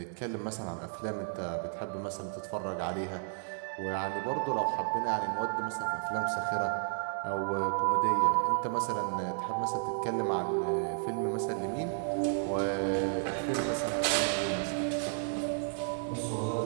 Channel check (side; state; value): left; silent; digital silence